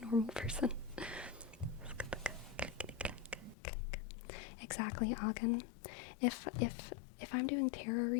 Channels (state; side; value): drops out; right; at 3.6 s